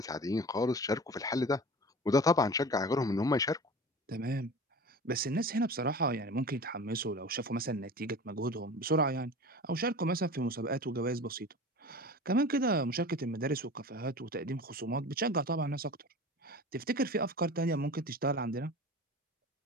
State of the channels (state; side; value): normal; both; correlation 0.36